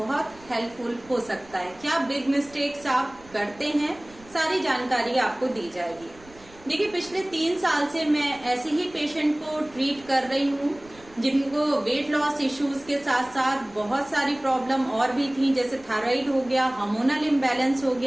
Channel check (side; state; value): right; noise; rumble, 24 dB below the sound